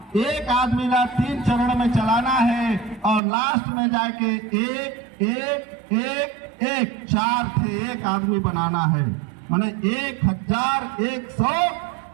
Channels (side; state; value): left; drops out; at 3.2 s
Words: एक आदमी ला 3 चरण में चलाना है और लास्ट में जाके एक 4 थे एक आदमी बनाना है। माने